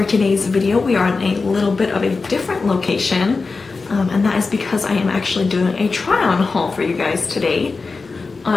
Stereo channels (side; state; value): right; quieter; 4.2 dB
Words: today's video we are in a little bit of a different location and that is because I am actually doing a try-on haul for you guys today.